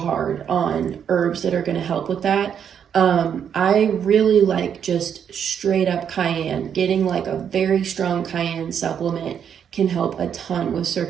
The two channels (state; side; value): quieter; left; 8.2 dB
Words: on herbs that are going to help with that. I really like just straight up cayenne. Getting like a very strong cayenne supplement can help a ton with